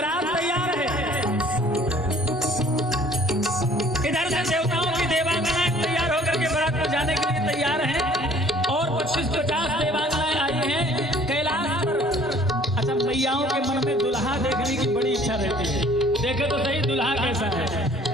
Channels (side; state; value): both; normal; correlation 0.55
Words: तैयार है, इधर से देवताओं की देवांगनाएं तैयार होकर के बारात में जाने के लिए तैयार हैं और 25-50 देवांगनाएं आई हैं कैलाश पर। अच्छा, मैयाओं के मन में दुल्हा देखने की बड़ी इच्छा रहती है, देखे तो सही दुल्हा कैसा है।